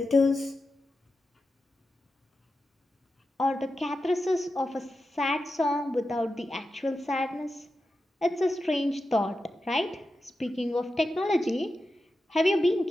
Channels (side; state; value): both; normal; correlation 0.91